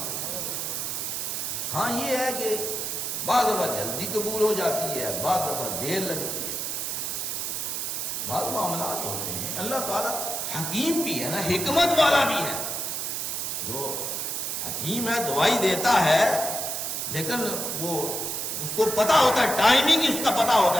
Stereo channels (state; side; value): noise; right; hiss, 2 dB below the sound